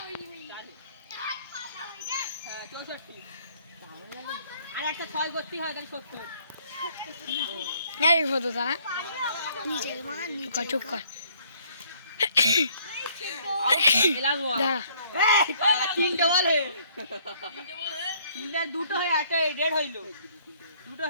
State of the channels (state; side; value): inverted; both; correlation -0.62